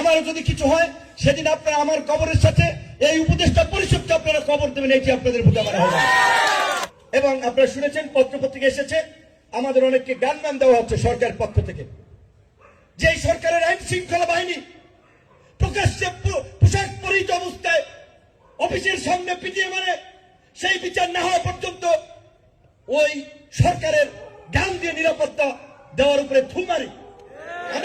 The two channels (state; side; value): identical; both; correlation 1.00